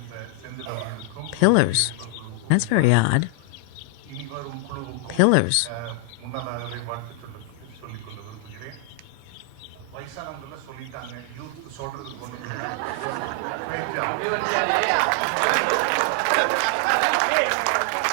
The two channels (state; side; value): different; both; correlation 0.00